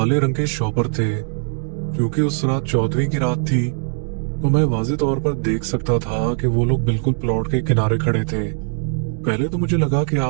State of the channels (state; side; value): silent; left; 55 dB below the other